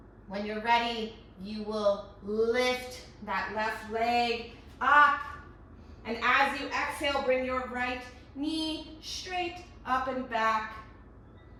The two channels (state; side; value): identical; both; correlation 1.00